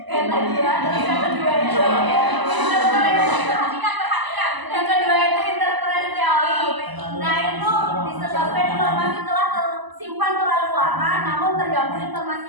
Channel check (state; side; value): late; left; 1.0 ms